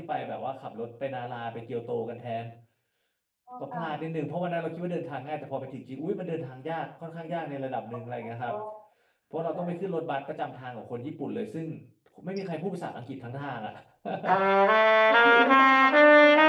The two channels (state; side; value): identical; both; correlation 1.00